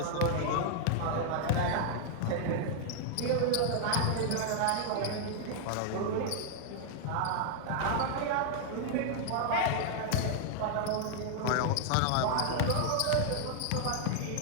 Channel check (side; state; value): both; different; correlation 0.00